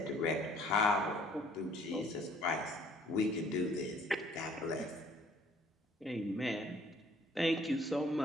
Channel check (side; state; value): both; normal; correlation 0.58